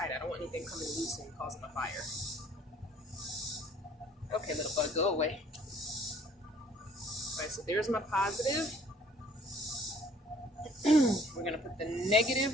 I don't want anything coming loose and causing a fire. Okay, little bug, go away. All right, so there's my positive. We're going to put the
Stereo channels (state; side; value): normal; both; correlation 0.57